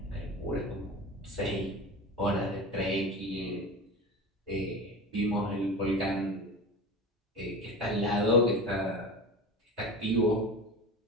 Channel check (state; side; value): normal; both; correlation 0.30